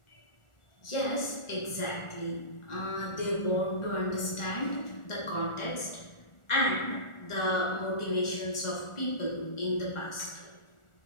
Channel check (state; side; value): late; right; 1.4 ms